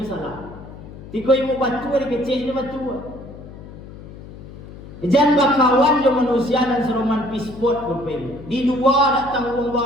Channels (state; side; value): noise; left; hum, 15 dB below the sound